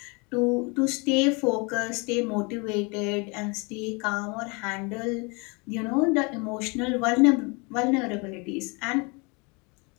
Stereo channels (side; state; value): right; quieter; 30.1 dB